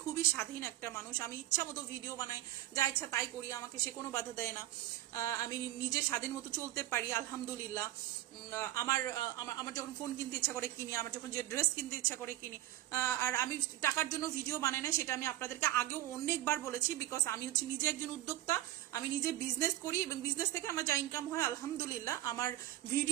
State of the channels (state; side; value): quieter; left; 15.2 dB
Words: খুবই স্বাধীন একটা মানুষ। আমি ইচ্ছা মতো ভিডিও বানাই, যা ইচ্ছা তাই করি, আমাকে সে কোনো বাধা দেয় না। আমি নিজে স্বাধীন মতো চলতে পারি, আলহামদুলিল্লাহ। আমার যখন ফোন কিনতে ইচ্ছা করে কিনি, আমার যখন যে ড্রেস কিনতে ইচ্ছা করে কিনি। আর আমি টাকার জন্য ভিডিও বানাই না, সেটা আমি আপনাদেরকে আগেও অনেকবার বলেছি, বিকজ আমি হচ্ছে নিজে একজন উদ্যোক্তা, আমি নিজে বিজনেস করি, এবং বিজনেস থেকে আমার যা ইনকাম হয় আলহামদুলিল্লাহ। আমার